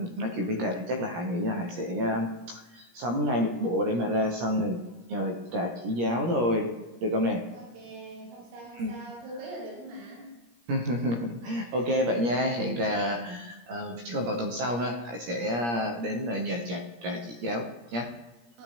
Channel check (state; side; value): late; left; 17 ms